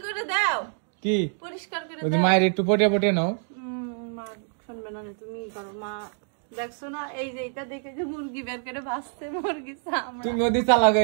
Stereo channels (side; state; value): left; silent; 61 dB below the other